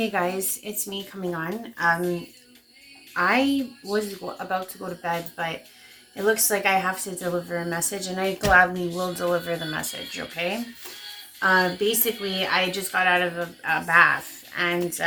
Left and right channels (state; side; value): identical; both; correlation 1.00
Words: guys, it's me coming on. I was about to go to bed, but it looks like I have to deliver a message, and I gladly will deliver the message, okay? Basically, I just got out of a bath, and